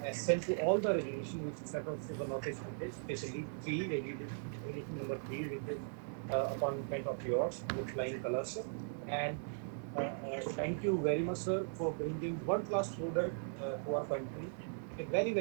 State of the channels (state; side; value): silent; left; digital silence